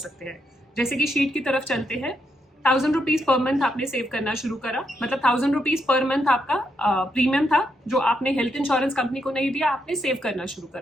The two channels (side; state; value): both; normal; correlation 0.80